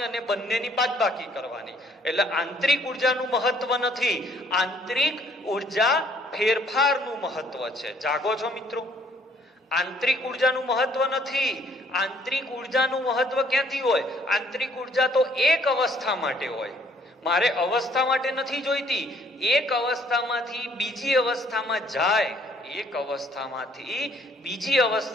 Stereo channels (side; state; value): both; normal; correlation 0.62